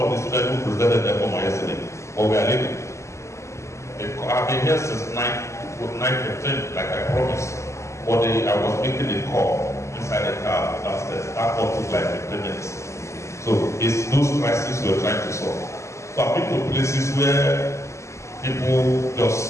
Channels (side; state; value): right; late; 0.14 ms